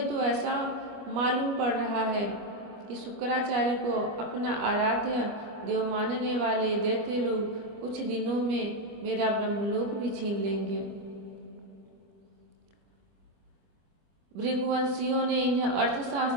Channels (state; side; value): late; left; 25 ms